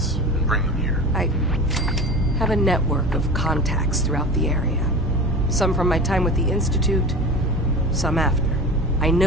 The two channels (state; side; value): normal; both; correlation 0.32